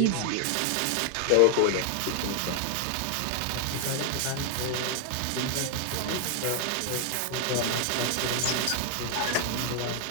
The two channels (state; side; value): different; both; correlation 0.00